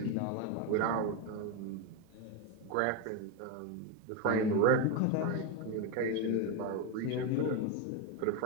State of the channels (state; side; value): different; both; correlation 0.02